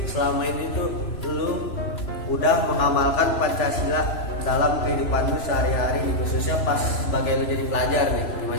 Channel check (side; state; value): right; late; 3.0 ms